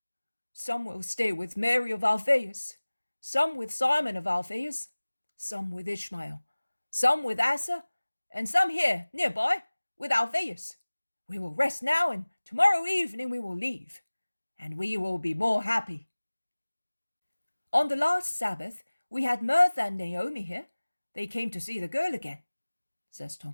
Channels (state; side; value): inverted; both; correlation -1.00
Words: Some will stay with Mary of Alphaeus, some with Simon of Alphaeus, some with Ishmael, some with Asa, and some here, nearby, with Alphaeus. We will rest now, and tomorrow evening we will leave, and we will be more happy. On the last Sabbath, we had Martha and Naomi here. They came to see the girl again, says